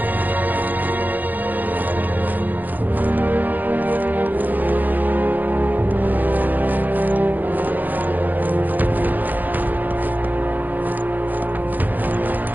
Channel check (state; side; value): late; left; 0.084 ms